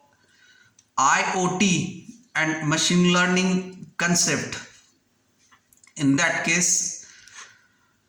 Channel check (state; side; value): identical; both; correlation 1.00